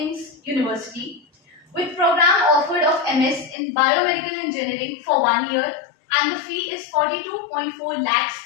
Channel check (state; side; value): drops out; right; at 3.6 s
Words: University, with program offered of MS in biomedical engineering for 1 year, and the fee is 42.4 lakhs.